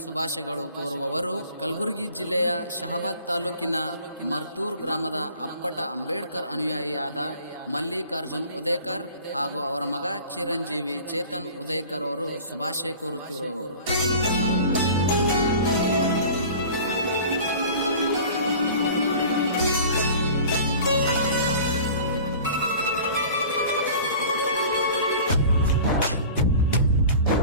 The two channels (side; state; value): both; inverted; correlation -0.43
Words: ಶುಭಾಶಯಗಳು ಕೋರುವವರು ಕಲಬುರಗಿ ಜಿಲ್ಲೆಯ ಶಹಾಬಾದ್ ತಾಲೂಕಿನ ಮರ್ತೂರ್ ಗ್ರಾಮದ ಅಪ್ಪಟ ಅಂಬೇಡ್ಕರ್ ಅನುಯಾಯಿಯಾದ ಮಲ್ಲಿಕಾರ್ಜುನ್ ಉದಯಕರ್ ಹಾಗೂ ಅವರ ಮಗ ಚಿರಂಜೀವಿ ಚೇತನ್ ಉದಯಕರ್ ಅವರು ಶುಭಾಶಯ ಕೋರುತ್ತಿರುವವರು.